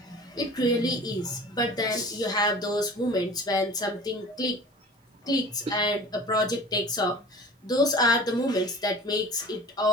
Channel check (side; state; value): both; normal; correlation 0.41